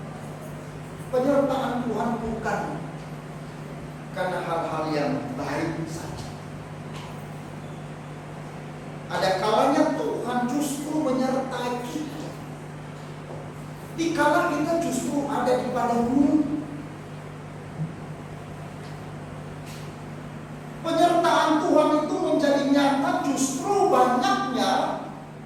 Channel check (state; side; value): identical; both; correlation 1.00